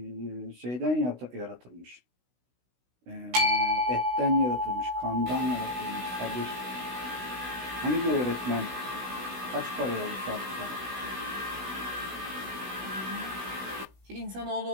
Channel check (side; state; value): left; late; 16 ms